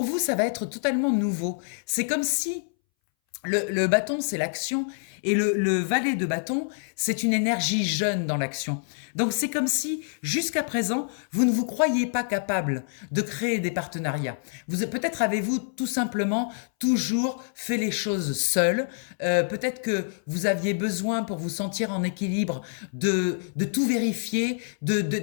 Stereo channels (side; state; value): right; silent; 61 dB below the other